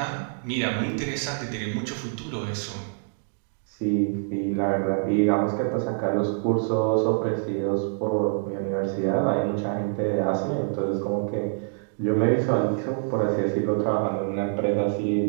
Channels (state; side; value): silent; left; digital silence